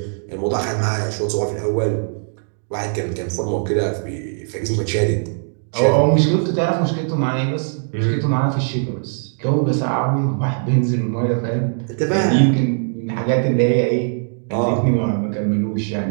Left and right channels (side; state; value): left; silent; digital silence